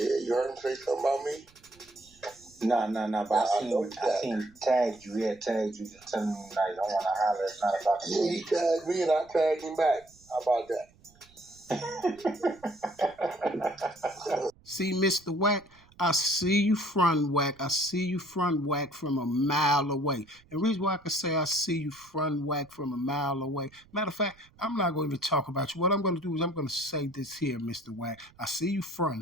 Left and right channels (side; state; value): right; noise; rumble, 29 dB below the sound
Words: you heard him say something about me? No, but I seen tagged you. He had tagged you to tell me, like, I want to holler. It's not about the Yeah, he tagged me and I tagged him back. How about that? See, Mr. Wack, I see you front Wack. I see you front Wack from a mile away. And the reason why I can say I see you front Wack from a mile away, matter of fact, I'm not going to even talk about you. What I'm going to do is I'm going to say this here, Mr. Wack. I see you